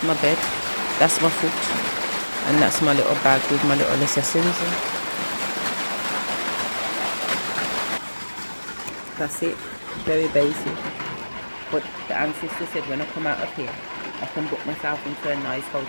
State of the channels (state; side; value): inverted; both; correlation -1.00